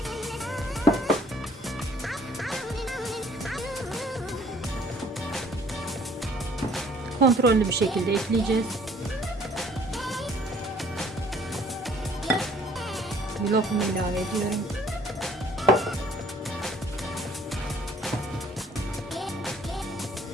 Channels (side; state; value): both; normal; correlation 0.58